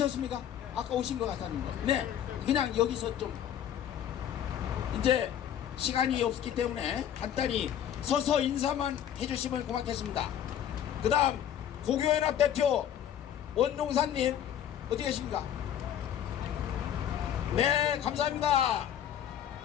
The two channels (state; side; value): quieter; right; 10.1 dB